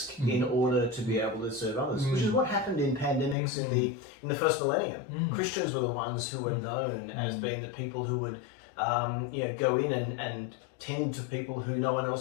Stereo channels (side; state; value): right; drops out; at 3.4 s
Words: in order to be able to serve others, which is what happened in pandemics in the first millennium. Christians were the ones who were known as being the people who would go in and tend to people who no one